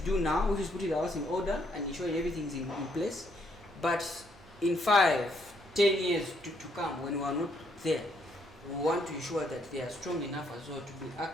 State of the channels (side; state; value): both; normal; correlation 0.72